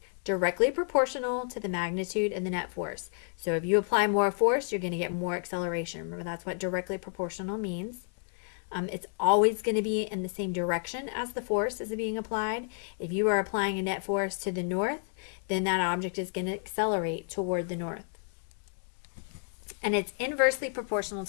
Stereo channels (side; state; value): right; silent; digital silence